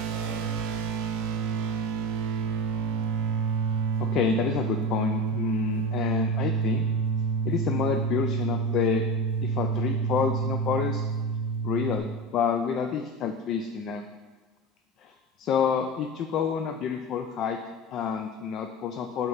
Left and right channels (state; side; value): normal; both; correlation 0.24